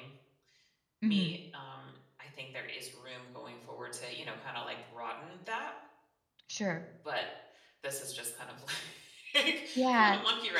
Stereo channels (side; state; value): both; identical; correlation 1.00